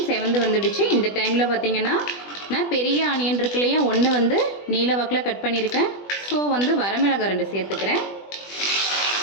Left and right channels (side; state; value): right; late; 20 ms